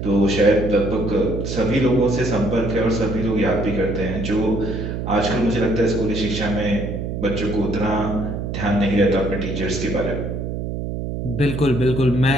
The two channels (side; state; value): right; noise; hum, 4 dB below the sound